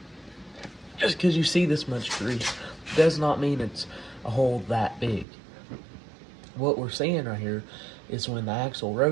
Just because you see this much grease does not mean it's a hole that big. What we're seeing right here is when the axle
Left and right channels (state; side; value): drops out; left; at 5.2 s